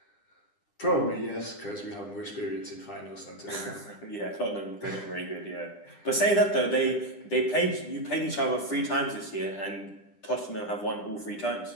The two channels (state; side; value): late; right; 9.9 ms